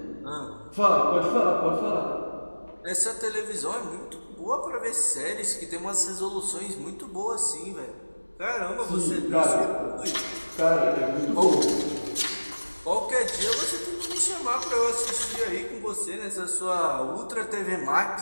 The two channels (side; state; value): both; inverted; correlation -1.00